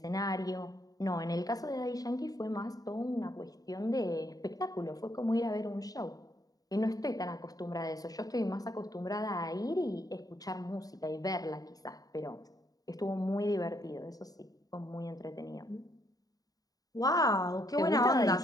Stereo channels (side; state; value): right; late; 0.18 ms